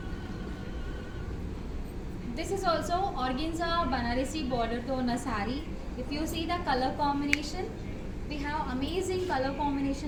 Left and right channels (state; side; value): identical; both; correlation 1.00